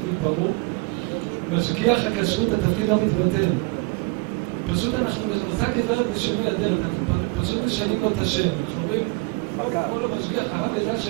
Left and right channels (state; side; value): quieter; left; 28.2 dB